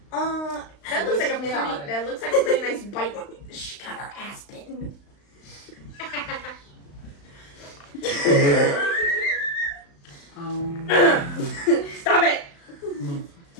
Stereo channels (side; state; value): right; late; 35 ms